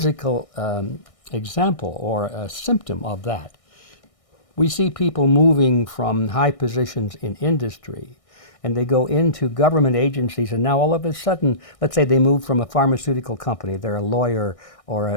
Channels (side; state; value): right; late; 1.6 ms